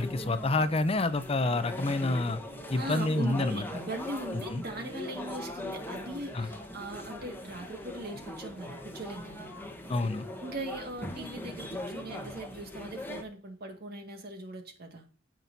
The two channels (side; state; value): both; normal; correlation 0.58